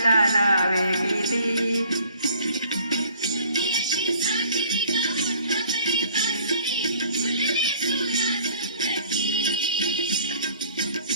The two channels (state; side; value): inverted; both; correlation -0.55